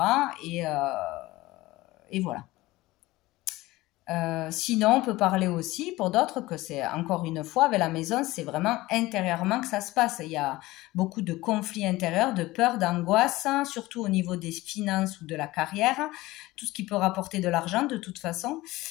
et voilà. Sinon, on peut parler aussi pour d'autres que c'est encore une fois avec la maison, c'est vraiment intérieurement que ça se passe. Il y a beaucoup de conflits intérieurs, de peur, d'angoisse, hein, surtout au niveau des finances ou de la carrière, tout ce qui peut rapporter de l'argent de toute façon.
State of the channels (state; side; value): quieter; right; 18.9 dB